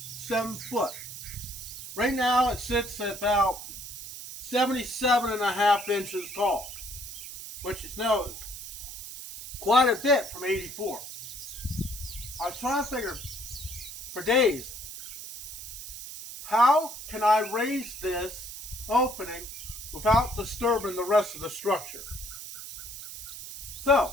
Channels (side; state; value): right; noise; hiss, 10 dB below the sound